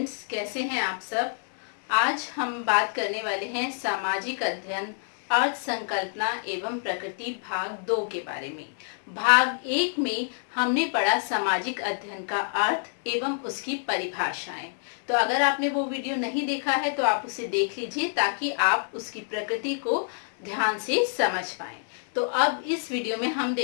कैसे हैं आप सब। आज हम बात करने वाले हैं सामाजिक अध्ययन, अर्थ संकल्पना एवं प्रकृति भाग 2 के बारे में। भाग 1 में हमने पढ़ा सामाजिक अध्ययन का अर्थ एवं उसकी परिभाषाएं। तो अगर आपने वो वीडियो नहीं देखा है तो आप उसे देख लीजिए ताकि आप उसकी प्रकृति को ध्यान से समझ पाएं। तो अब इस वीडियो में हम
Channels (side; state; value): right; silent; digital silence